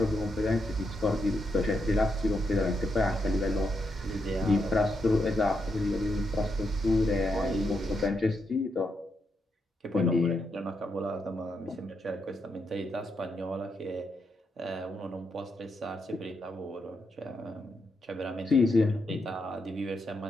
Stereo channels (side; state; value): both; normal; correlation 0.82